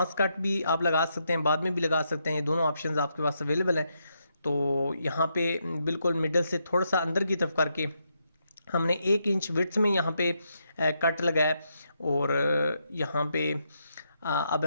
कट भी आप लगा सकते हैं, बाद में भी लगा सकते हैं, ये दोनों ऑप्शंस आपके पास अवेलेबल हैं। तो यहाँ पे बिल्कुल मिडल से थोड़ा सा अंदर की तरफ करके हमने 1 इंच विड्थ में यहाँ पे कट लगाया और यहाँ पे अब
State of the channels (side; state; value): both; inverted; correlation -0.80